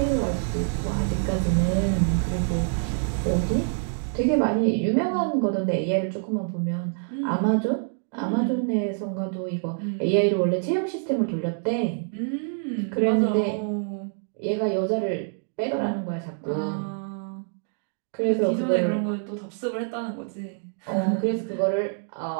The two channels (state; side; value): silent; left; digital silence